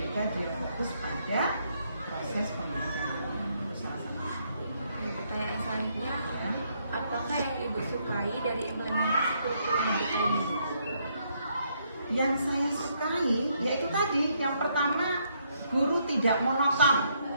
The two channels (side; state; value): both; inverted; correlation -0.73